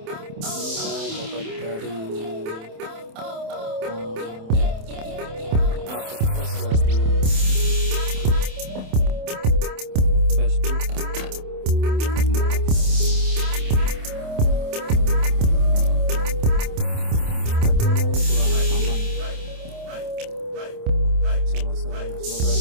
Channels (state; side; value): late; left; 27 ms